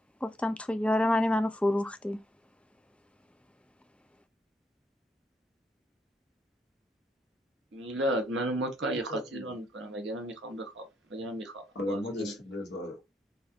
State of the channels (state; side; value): normal; both; correlation 0.76